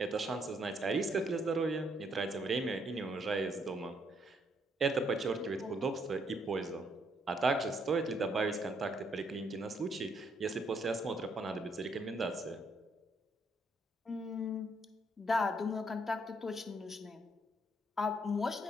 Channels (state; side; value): normal; both; correlation 0.71